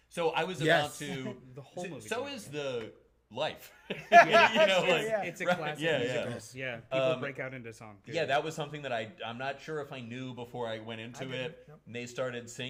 So I was Yes. about to. The whole movie. So is the life. That's true, like, yeah. It's a right, classic yeah, musical. yeah. People break out into song. Yeah, that was something that I'm not sure if I knew before I went into didn't. it. Nope. And they started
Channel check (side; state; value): both; identical; correlation 1.00